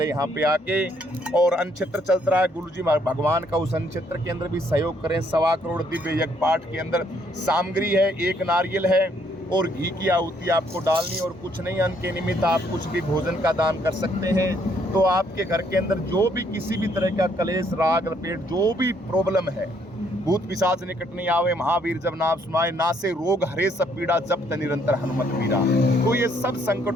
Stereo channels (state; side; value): normal; both; correlation 0.68